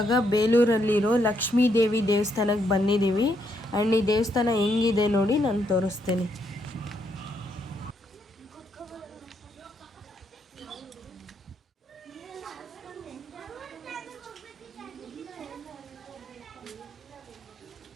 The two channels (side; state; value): both; normal; correlation 0.76